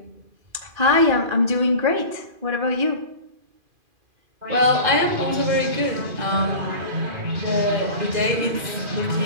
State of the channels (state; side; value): late; left; 2.4 ms